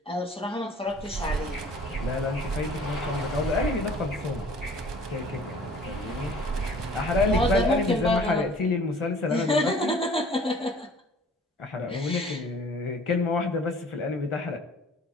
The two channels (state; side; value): normal; both; correlation 0.51